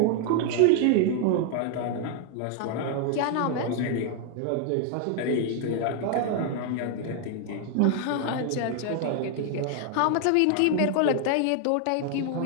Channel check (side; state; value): both; different; correlation 0.00